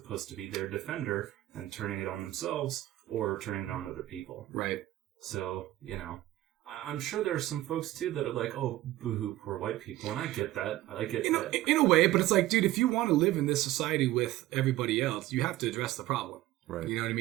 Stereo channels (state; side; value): quieter; left; 15.9 dB